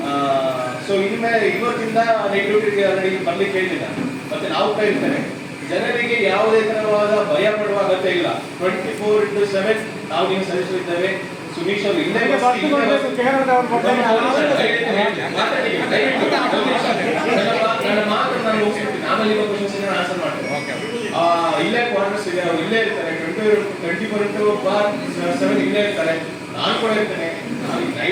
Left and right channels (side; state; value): both; identical; correlation 1.00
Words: ಸೊ ಇನ್ಮೇಲೆ ಇವತ್ತಿಂದ ನೈಟ್ ಡ್ಯೂಟಿಗೆ ಆಲ್ರೆಡಿ ಬರ್ಲಿಕ್ಕೆ ಹೇಳಿಲ್ಲ. ಮತ್ತೆ ನಾವು ಕೈರ್ತೇನೆ, ಜನರಿಗೆ ಯಾವುದೇ ತರವಾದ ಭಯ ಪಡುವ ಅಗತ್ಯ ಇಲ್ಲ. 24/7 ನಾವು ನೀವು ಸಲ್ಲಿಸುತ್ತಿದ್ದೇವೆ. ಸುನೀಶ್ ಅವರು ಇಲ್ಲೇ ನನ್ನ ಮಾತು ನಾನು ಮುಗಿಸ್ಬಿಡ್ತೀನಿ, ಆಮೇಲೆ ಇವಾಗ ಕ್ವಶನ್ಸ್ ಆನ್ಸರ್ ಮಾಡ್ತೀನಿ. ಇಲ್ಲೇ ಕ್ವಾರ್ಟರ್ಸ್ ಇದೆ, ಅವ್ರು ಇಲ್ಲೇ ಇರ್ತಾರೆ. 24/7 ಇಲ್ಲೇ ಇರ್ತಾರೆ. ನಾನು ಕೂಡ ಇರ್ತೇನೆ.